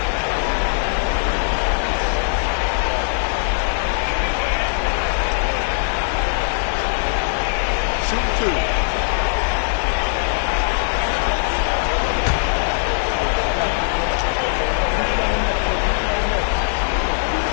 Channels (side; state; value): right; silent; 60 dB below the other